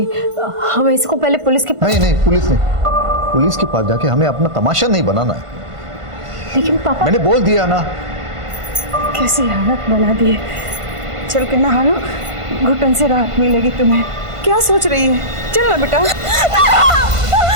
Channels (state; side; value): late; left; 1.5 ms